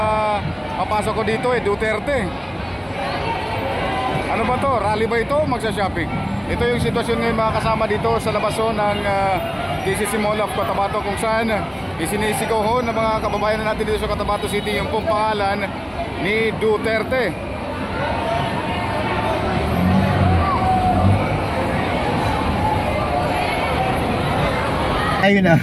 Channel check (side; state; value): both; identical; correlation 1.00